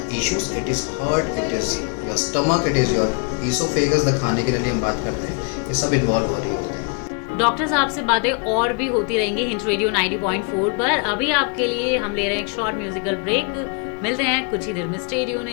issues. It is heart, it is your stomach, it is your esophagus, the खाने के लिए हम बात करते हैं, ये सब involve हो रही होते हैं। डॉक्टर साहब से बातें और भी होती रहेंगी हिंट रेडियो 90.4 पर। अभी आपके लिए हम ले रहे हैं एक शॉर्ट म्यूजिकल ब्रेक। मिलते हैं कुछ ही देर में। Stay tuned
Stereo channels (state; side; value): quieter; right; 36.1 dB